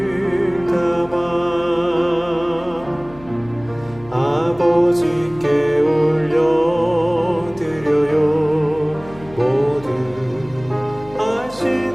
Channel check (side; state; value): left; noise; hum, 20 dB below the sound